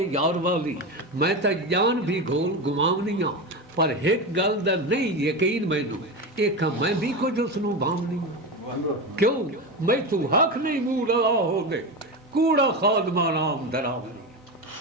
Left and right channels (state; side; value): normal; both; correlation 0.19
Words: यार वाली, मैं तो जान भी घोल गुमावनियां, पर एक गल दा नहीं यकीन मैनू, एक मैं भी कुछ उसनू भावनी, क्यों मैं तू हक नहीं मूह लगा हो दे, कूड़ा खादमा नाम दरावनी,